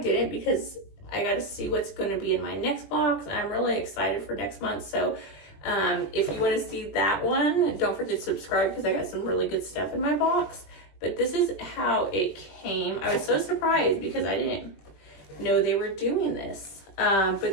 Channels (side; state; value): right; late; 20 ms